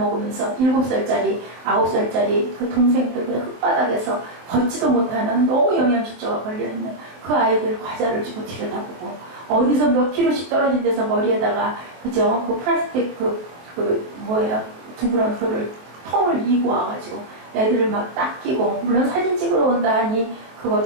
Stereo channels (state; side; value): late; left; 23 ms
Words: 7살짜리, 9살짜리 그 동생들 그냥 흙바닥에서 걷지도 못하는 너무 영양실조가 걸려있는 그 아이들 과자를 주고 들여다보고 어디서 몇 킬로씩 떨어진 데서 머리에다가 그죠? 그 플라스틱 뭐예요? 둥그런 그거를 통을 이고 와가지고 애들을 막 닦이고 물론 사진 찍으러 온다 하니 그거